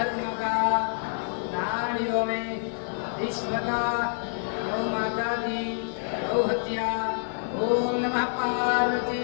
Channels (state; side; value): silent; right; digital silence